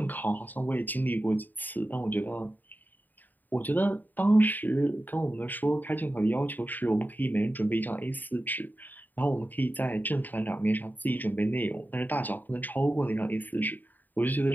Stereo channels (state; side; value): late; right; 0.087 ms